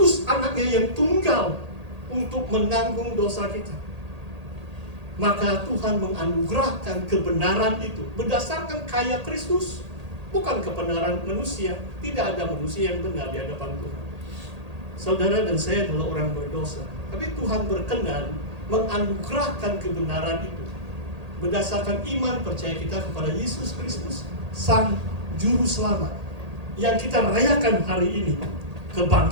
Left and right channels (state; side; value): late; left; 1.8 ms